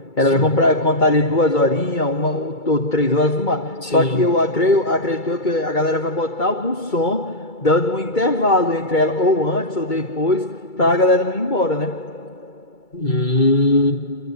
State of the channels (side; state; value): right; late; 2.3 ms